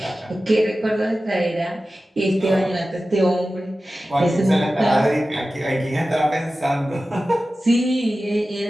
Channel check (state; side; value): normal; both; correlation 0.95